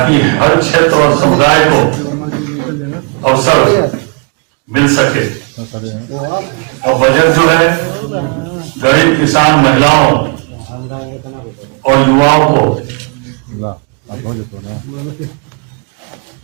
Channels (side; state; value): left; quieter; 35.6 dB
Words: हर क्षेत्र और समुदाय को अवसर मिल सके। और बजट जो है गरीब किसान, महिलाओं और युवाओं को